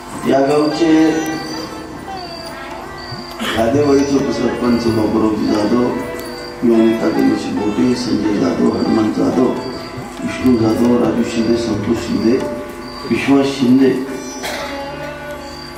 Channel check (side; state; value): both; identical; correlation 1.00